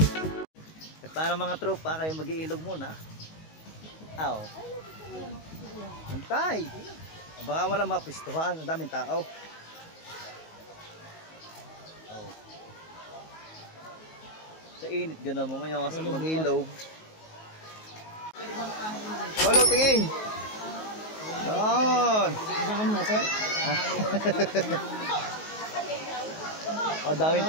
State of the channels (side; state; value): right; late; 19 ms